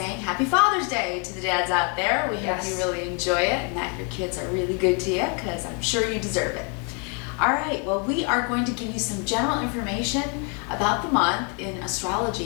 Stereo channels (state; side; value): quieter; right; 36.6 dB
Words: Happy Father's Day to the dads out there. We hope you really enjoy it and that your kids are really good to you, because I'm sure you deserve it. All right, well, we are going to give you some general information about the month in